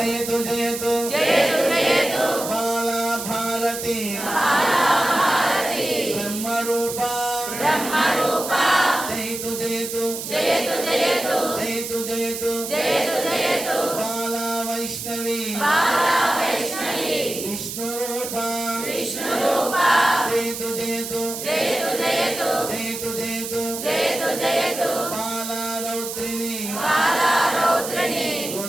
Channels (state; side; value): noise; right; hiss, 7 dB below the sound